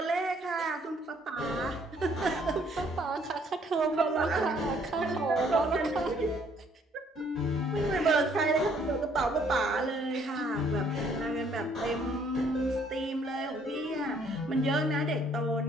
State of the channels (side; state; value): both; normal; correlation 0.64